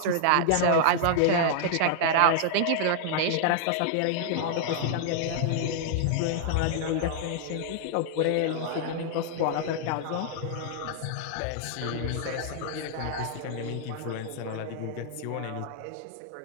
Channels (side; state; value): both; different; correlation -0.01